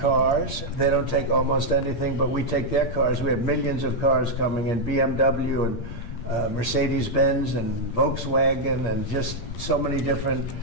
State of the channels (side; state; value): right; late; 8.6 ms